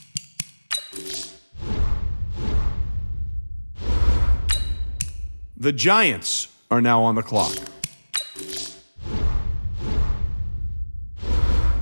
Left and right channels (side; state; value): both; inverted; correlation -1.00